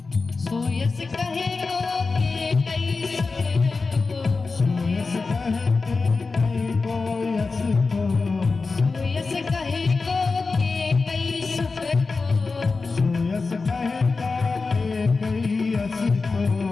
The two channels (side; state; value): right; quieter; 4.1 dB